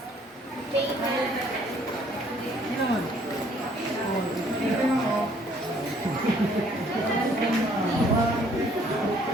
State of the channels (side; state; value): both; normal; correlation 0.62